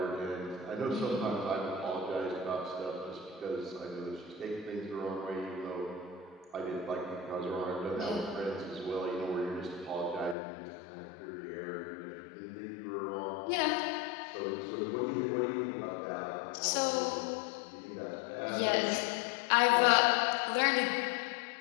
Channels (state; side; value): drops out; right; at 10.4 s